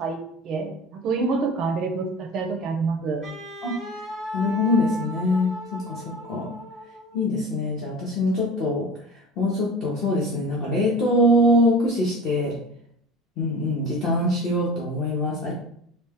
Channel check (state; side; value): normal; both; correlation 0.36